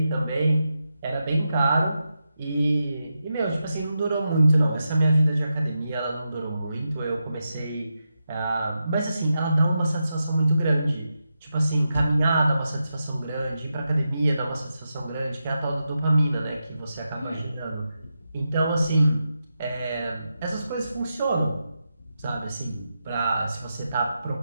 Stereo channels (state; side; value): inverted; both; correlation -0.88